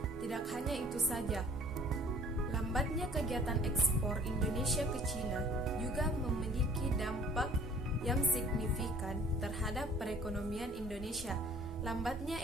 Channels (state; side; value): normal; both; correlation 0.52